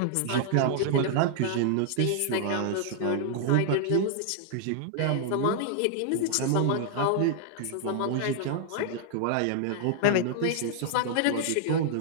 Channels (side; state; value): both; different; correlation -0.01